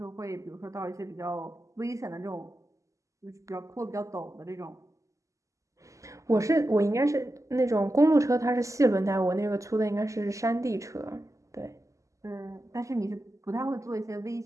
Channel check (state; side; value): late; left; 0.16 ms